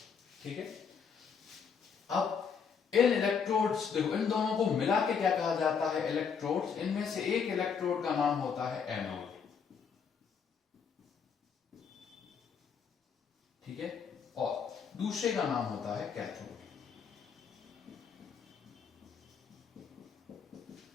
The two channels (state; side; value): quieter; right; 6.5 dB